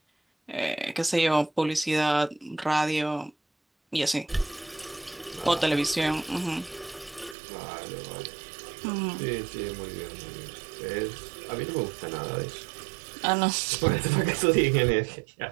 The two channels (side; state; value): left; drops out; at 7.4 s